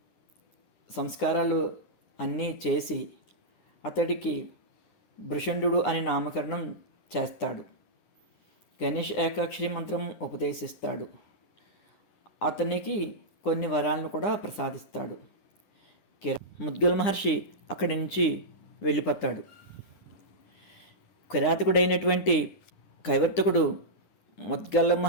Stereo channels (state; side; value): late; right; 9.8 ms